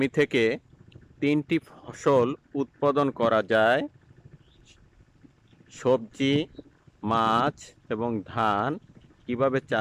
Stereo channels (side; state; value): both; identical; correlation 1.00